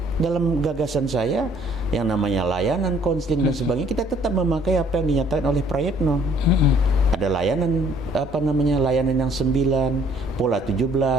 dalam gagasan saya yang namanya layanan, konseling dan sebagainya, kita tetap memakai apa yang dinyatakan oleh Prayitno. Ada layanan layanan yang 9, pola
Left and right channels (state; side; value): normal; both; correlation 0.60